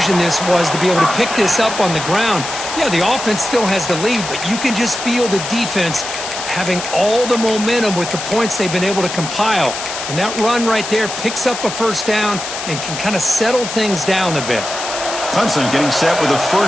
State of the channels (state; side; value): noise; left; hiss, 7 dB below the sound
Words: this was to be able to pick this up on the ground. Yeah, the offense still has the lead, but you can just feel the defense having all the momentum with the points they've been able to compile. And that run right there picks up a first down and can kind of settle things down a bit. Clemson getting set with a